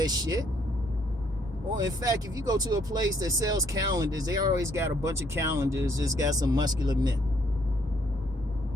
shit. Or in fact, if you go to a place that sells calendars, they always got a bunch of calendars. Just got some muscular men.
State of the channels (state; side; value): normal; both; correlation 0.68